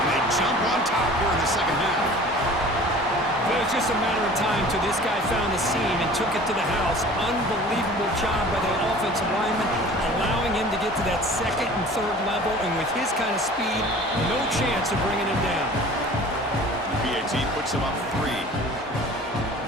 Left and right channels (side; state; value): both; normal; correlation 0.44